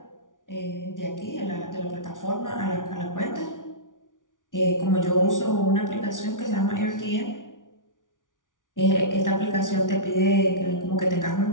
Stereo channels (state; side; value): late; right; 0.88 ms